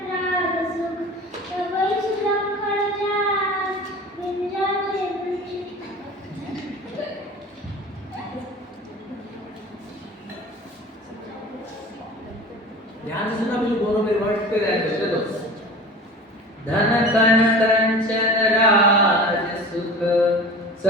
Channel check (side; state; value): both; normal; correlation 0.37